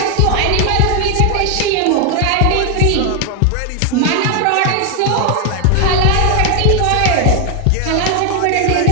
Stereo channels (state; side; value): different; both; correlation 0.00